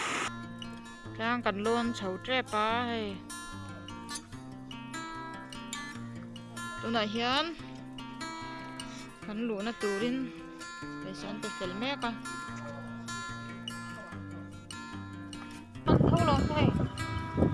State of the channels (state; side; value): identical; both; correlation 1.00